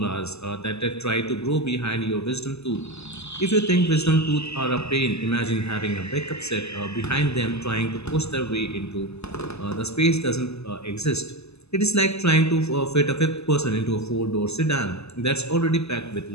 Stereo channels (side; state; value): right; late; 0.79 ms